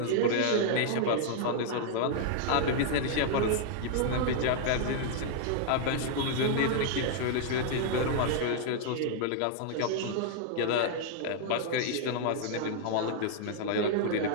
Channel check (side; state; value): both; different; correlation -0.01